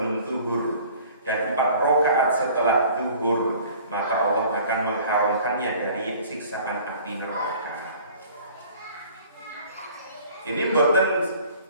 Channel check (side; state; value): both; inverted; correlation -0.49